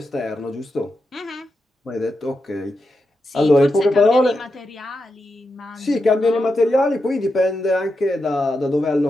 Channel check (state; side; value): normal; both; correlation 0.87